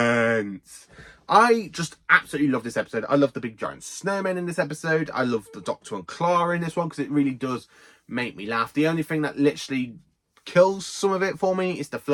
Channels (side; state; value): both; identical; correlation 1.00